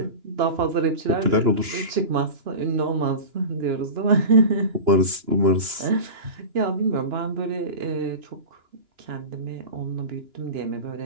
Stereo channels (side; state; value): left; late; 2.9 ms